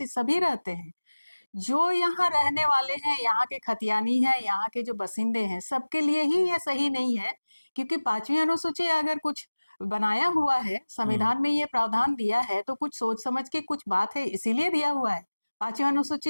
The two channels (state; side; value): inverted; both; correlation -1.00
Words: सभी रहते हैं। जो यहाँ रहने वाले हैं, यहाँ के खतियानी हैं, यहाँ के जो बसिंदे हैं, सबके लिए ही ये सही नहीं है, क्योंकि 5वीं अनुसूची अगर कुछ बनाया हुआ है, संविधान में ये प्रावधान दिया है, तो कुछ सोच समझ के कुछ बात है, इसीलिए दिया हुआ है। 5वीं